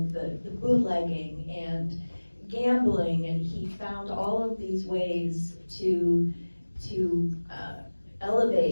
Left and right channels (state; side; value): inverted; both; correlation -1.00